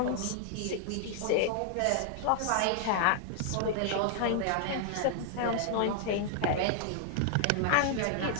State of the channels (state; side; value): different; both; correlation 0.00